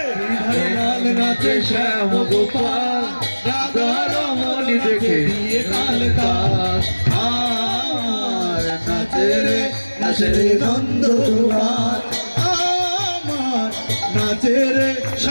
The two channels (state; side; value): inverted; both; correlation -1.00